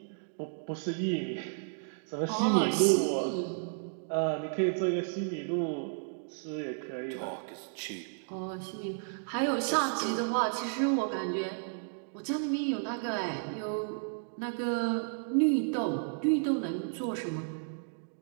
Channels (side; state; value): left; silent; digital silence